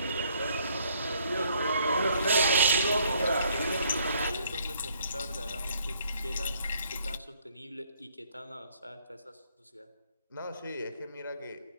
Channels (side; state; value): both; inverted; correlation -0.64